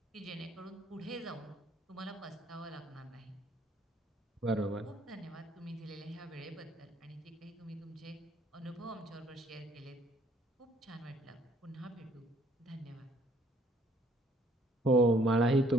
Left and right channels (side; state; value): both; normal; correlation 0.62